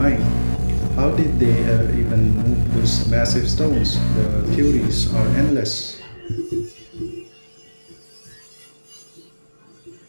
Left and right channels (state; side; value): inverted; both; correlation -1.00